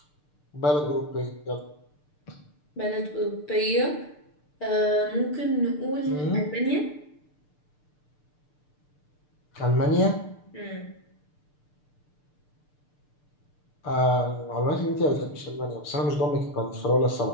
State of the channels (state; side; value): late; right; 6.7 ms